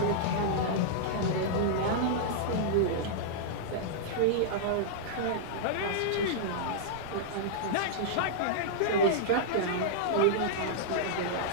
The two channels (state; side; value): different; both; correlation -0.02